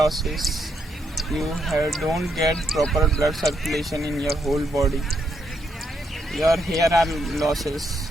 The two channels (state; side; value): normal; both; correlation 0.77